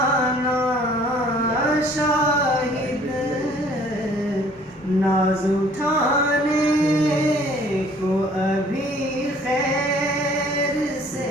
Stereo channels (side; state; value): both; normal; correlation 0.56